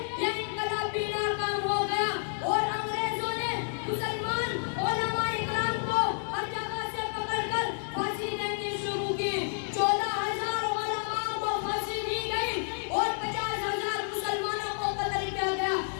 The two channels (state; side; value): silent; right; 58 dB below the other